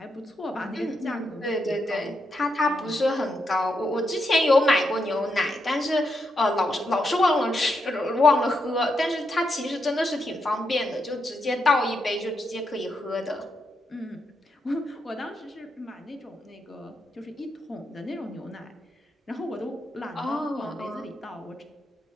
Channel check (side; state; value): both; normal; correlation 0.82